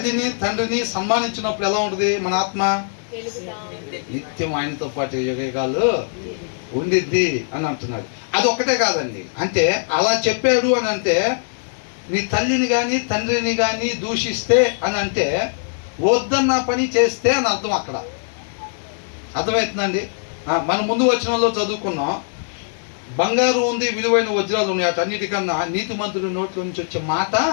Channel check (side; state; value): right; silent; digital silence